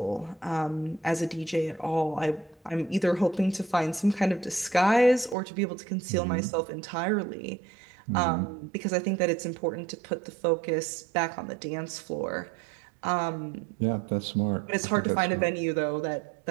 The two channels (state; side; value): drops out; left; at 5.4 s